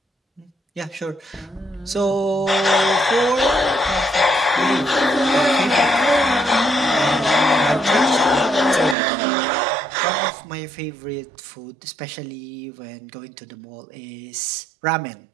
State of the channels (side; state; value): left; drops out; at 9.0 s